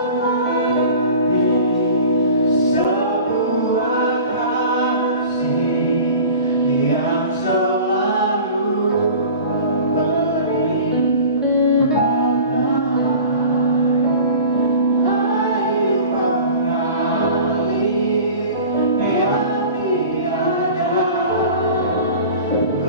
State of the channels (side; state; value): both; inverted; correlation -0.41